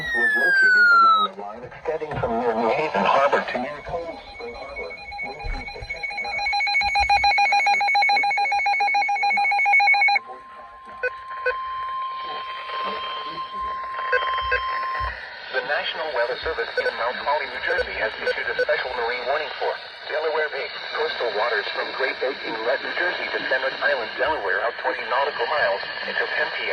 was located along the line extending from near New Haven Harbor to near Cold Spring Harbor, moving to 50 knots. The National Weather Service in Mount Holly, New Jersey has issued a special marine warning for Delaware Bay. Coastal waters from Great Bay Inlet, New Jersey to Fenwick Island, Delaware out 20 nautical miles until 10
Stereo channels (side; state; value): both; identical; correlation 1.00